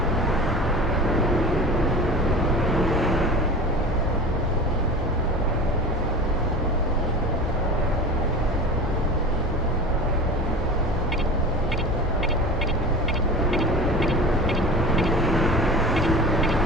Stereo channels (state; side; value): normal; both; correlation 0.34